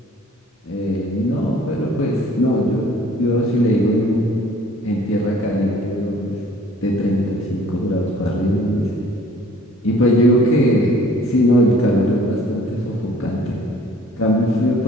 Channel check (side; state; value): both; normal; correlation 0.54